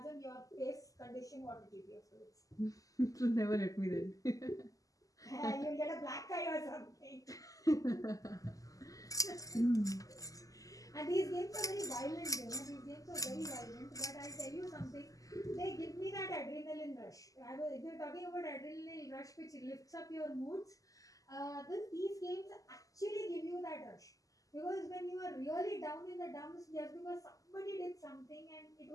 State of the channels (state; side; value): late; right; 0.17 ms